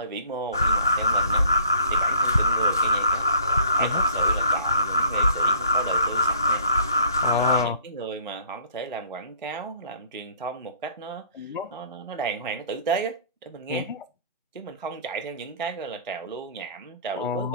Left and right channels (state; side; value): inverted; both; correlation -0.56